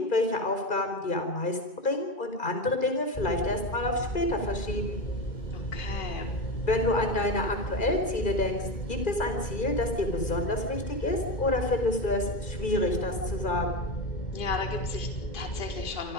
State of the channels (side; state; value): right; late; 2.4 ms